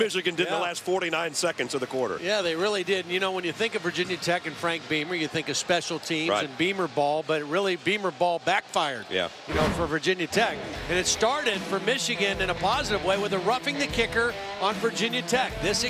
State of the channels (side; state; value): both; identical; correlation 1.00